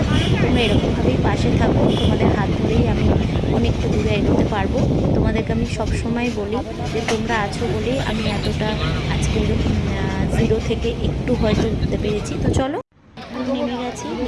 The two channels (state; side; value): identical; both; correlation 1.00